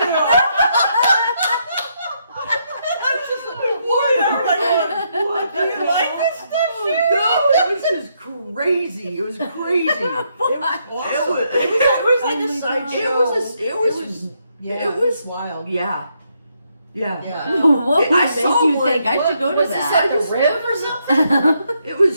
I was just looking forward. Everybody going, "What? Do you like this stuff, Sherri?" No, it was just crazy. It was crazy. It was awesome. was- It was like a sideshow. It was wild. Yeah. Yeah. What I would make saw you one. think I should go to Was this that? at the Riv or something? It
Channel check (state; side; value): inverted; both; correlation -0.76